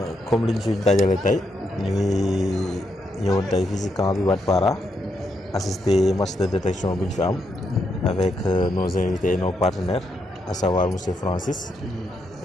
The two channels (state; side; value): normal; both; correlation 0.80